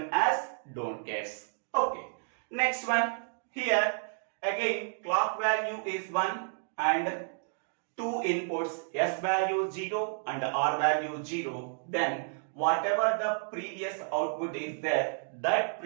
as don't guess. Okay. Next one. Here again clock value is 1 and two inputs S value 0 and R value 0. Then whatever the previous output is there, that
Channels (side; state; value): left; silent; digital silence